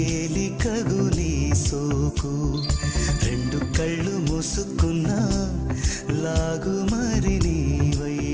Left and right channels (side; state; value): both; identical; correlation 1.00